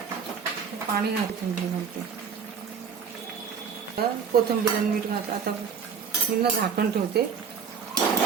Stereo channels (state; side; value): quieter; left; 6.6 dB